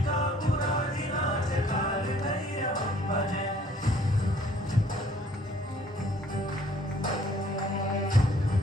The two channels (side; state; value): both; normal; correlation 0.59